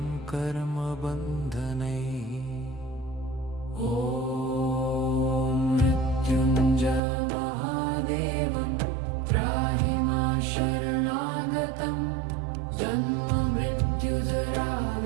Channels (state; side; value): drops out; left; at 7.0 s